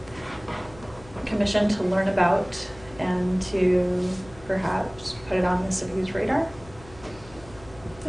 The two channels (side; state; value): left; noise; hum, 20 dB below the sound